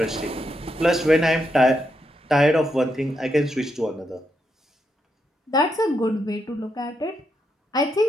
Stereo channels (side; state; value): both; normal; correlation 0.81